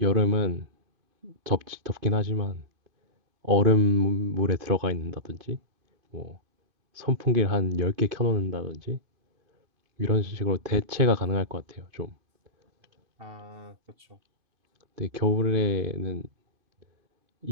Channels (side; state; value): left; late; 2.5 ms